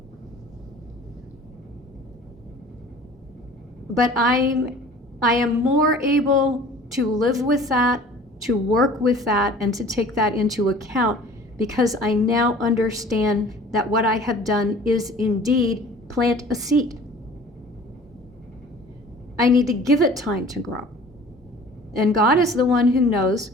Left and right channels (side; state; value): both; normal; correlation 0.47